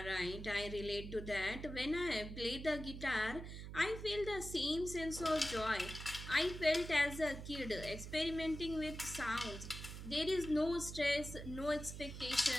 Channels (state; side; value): noise; right; hum, 9 dB below the sound